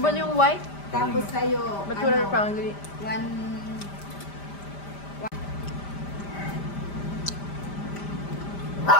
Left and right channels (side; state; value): right; late; 5.0 ms